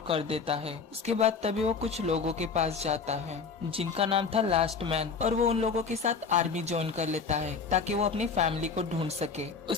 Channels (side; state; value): right; quieter; 5.2 dB